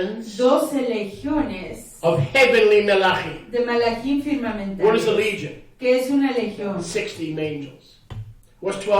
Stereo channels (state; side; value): identical; both; correlation 1.00